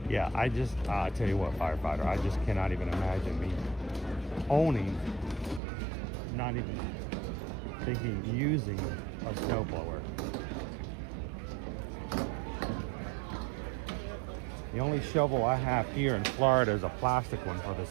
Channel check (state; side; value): drops out; left; at 5.6 s